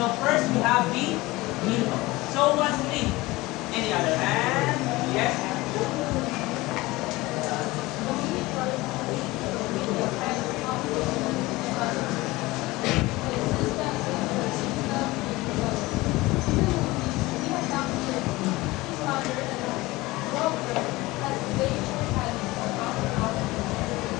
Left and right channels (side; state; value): right; quieter; 20.5 dB